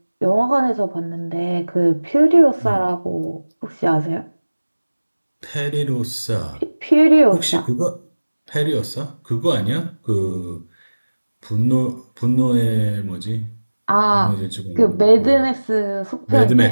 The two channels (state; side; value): inverted; both; correlation -1.00